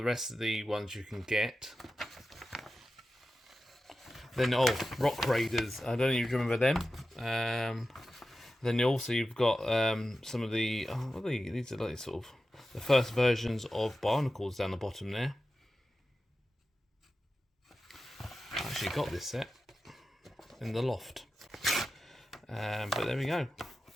rest of the ones you can get. Then, Rock Raiders. I don't know if you remember them. Then also you've got some of the... what are these are like sort of the first versions of Barnacles down the bottom there. I actually got this set in the loft. But there we go.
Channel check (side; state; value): both; normal; correlation 0.93